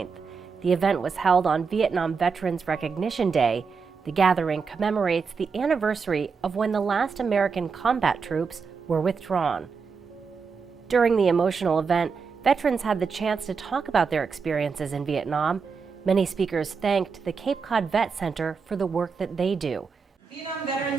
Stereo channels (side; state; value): left; quieter; 5.4 dB